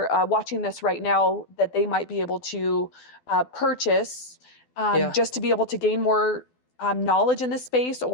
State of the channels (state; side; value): late; right; 12 ms